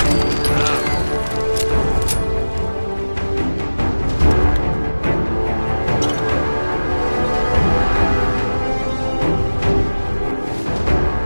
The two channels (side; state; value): both; inverted; correlation -1.00